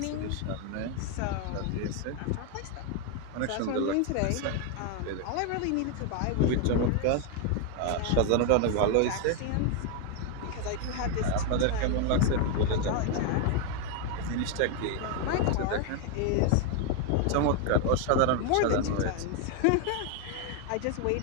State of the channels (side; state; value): both; different; correlation 0.01